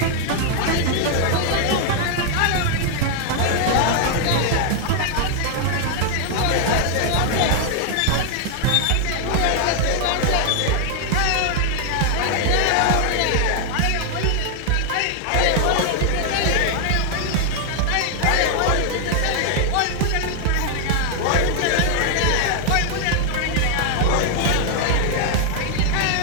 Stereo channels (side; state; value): both; different; correlation 0.00